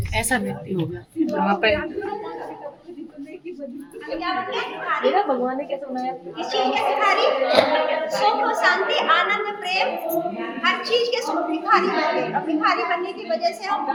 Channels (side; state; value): both; identical; correlation 1.00